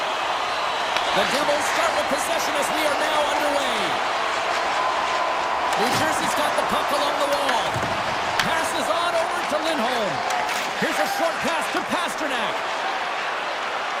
The Devils start with possession as we are now underway. New Jersey's got the puck along the wall. Passes on over to Lindholm. Here's a short pass to Pasternak.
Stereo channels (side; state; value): both; identical; correlation 1.00